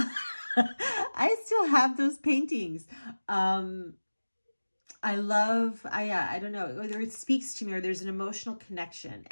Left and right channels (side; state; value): both; inverted; correlation -1.00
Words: I still have those paintings. I don't know, whether it speaks to me or there's an emotional connection.